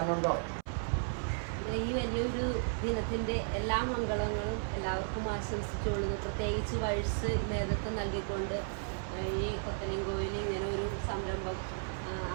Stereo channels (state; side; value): silent; left; 55 dB below the other